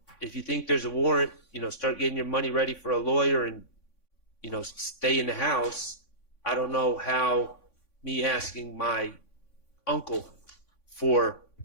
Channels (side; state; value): right; late; 3.5 ms